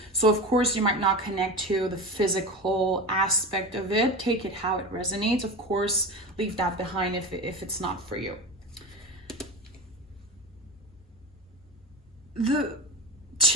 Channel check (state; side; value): normal; both; correlation 0.26